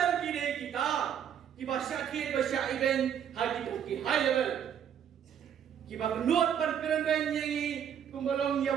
kini kita kiba syakit basya event hagi ki high level kiba kenut pan keren ben yengi kumbalong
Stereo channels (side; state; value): left; quieter; 8.9 dB